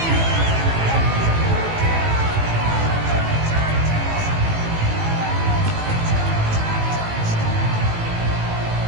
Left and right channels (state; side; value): late; left; 18 ms